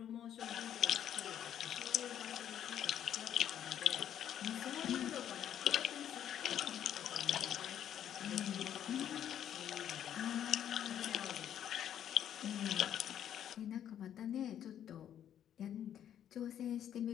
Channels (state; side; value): quieter; right; 10.1 dB